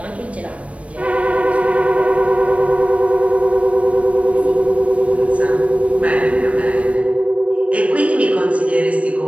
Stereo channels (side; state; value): left; late; 0.063 ms